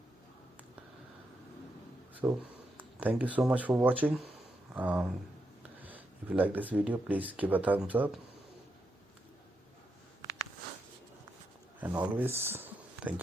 So thank you so much for watching. If you like this video, please give a thumbs up, and always thank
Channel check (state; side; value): normal; both; correlation 0.83